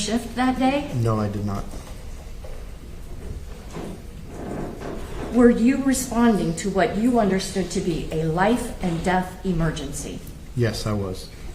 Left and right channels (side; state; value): both; identical; correlation 1.00